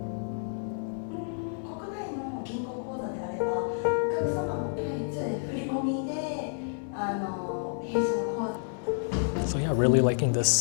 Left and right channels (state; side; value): silent; right; digital silence